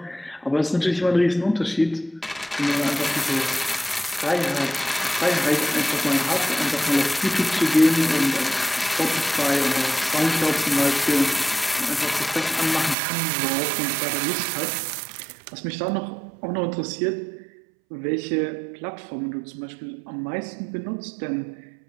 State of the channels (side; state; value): left; drops out; at 13.0 s